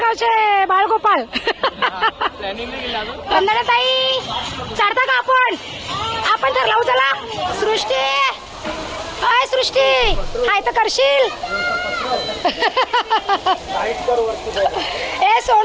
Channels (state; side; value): identical; both; correlation 1.00